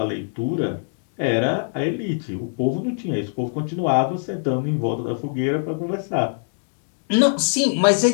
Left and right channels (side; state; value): right; silent; digital silence